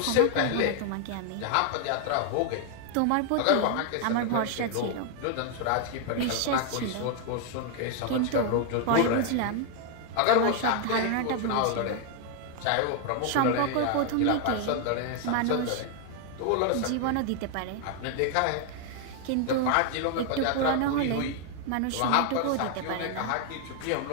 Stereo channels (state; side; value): different; both; correlation 0.00